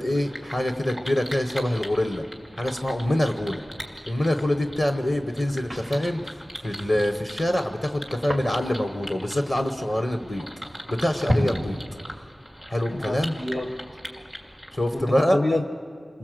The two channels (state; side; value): normal; both; correlation 0.97